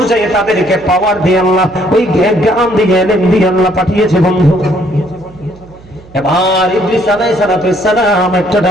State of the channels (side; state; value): right; noise; hum, 23 dB below the sound